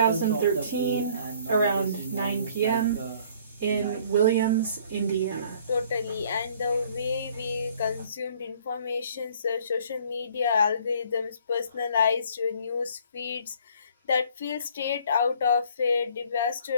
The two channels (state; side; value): inverted; both; correlation -0.57